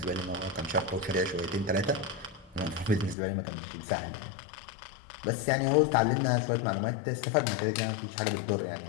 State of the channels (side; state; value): right; drops out; at 3.2 s